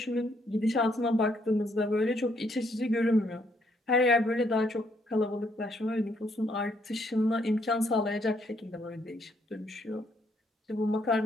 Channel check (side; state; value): both; normal; correlation 0.71